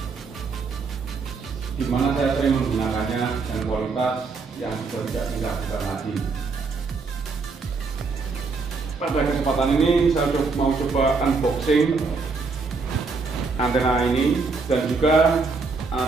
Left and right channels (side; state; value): left; quieter; 4.4 dB